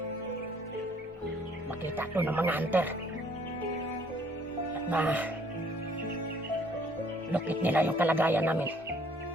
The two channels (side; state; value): both; normal; correlation 0.61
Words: Makita to ng mga hunter. At lukit nila yung kalagayan namin.